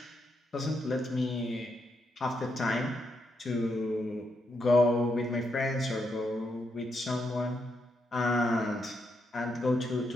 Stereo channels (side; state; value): both; normal; correlation 0.80